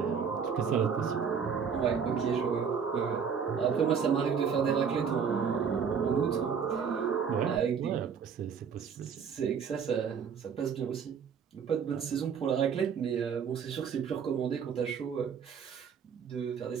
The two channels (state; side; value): quieter; left; 6.8 dB